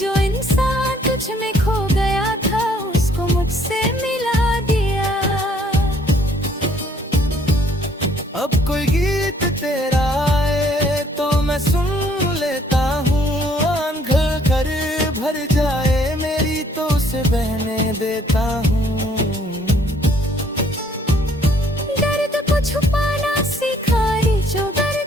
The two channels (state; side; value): normal; both; correlation 0.63